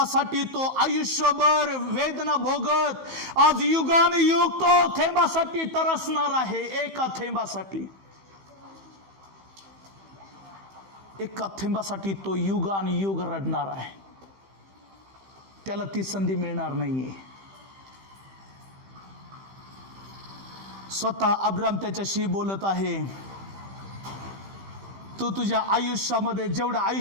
तो आयुष्यभर वेदना भोगत आज युगानुयुग तो थेंबासाठी तरसणार आहे. एका थेंबासाठी, एका थेंबासाठी तो युगानुयुग रडणार आहे. त्याला ती संधी मिळणार नाहीये. स्वतः अब्राम त्याच्याशी बोलत आहे, तू तुझ्या आयुष्यामध्ये जेवढं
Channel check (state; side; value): late; left; 15 ms